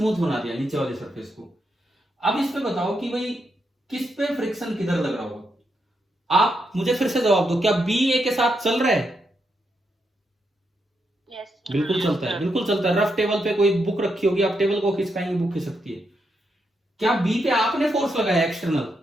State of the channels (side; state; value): both; normal; correlation 0.82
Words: बना दिया, नीचे वाले सरफेस को। अब इस पे बताओ कि भाई किस पे फ्रिक्शन किधर लग रहा होगा? आप मुझे फिर से जवाब दो, क्या बी ए के साथ चल रहा है? बिल्कुल चलता है, बिल्कुल चलता है। रफ टेबल पे कोई बुक रखी होगी, आप टेबल को खिसकाएंगे, बुक खिसक सकती है। क्या बी पे आपने फोर्स लगाया एक्सटर्नल?